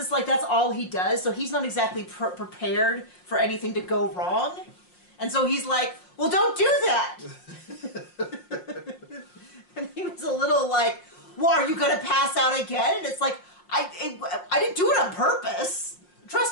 like that's all he does. So he's not exactly prepared for anything to go wrong. And so he's like, well, don't do that. And he was a little like, well, are you going to pass out again? And it's like, I didn't do it on purpose.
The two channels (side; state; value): right; late; 5.6 ms